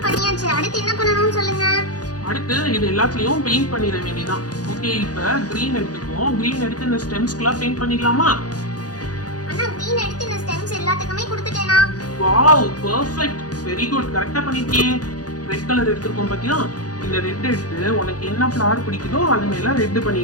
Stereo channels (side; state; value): right; late; 0.68 ms